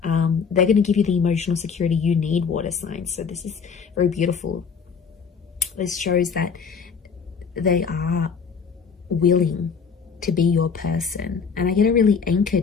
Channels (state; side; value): quieter; right; 5.9 dB